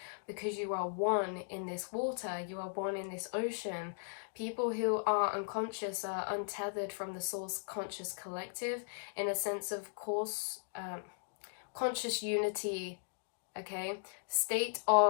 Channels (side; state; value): right; silent; digital silence